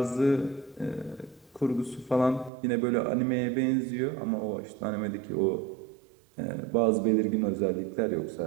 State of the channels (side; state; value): left; drops out; at 2.5 s